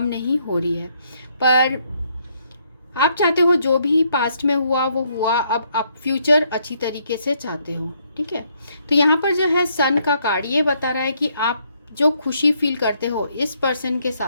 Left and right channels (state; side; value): inverted; both; correlation -0.72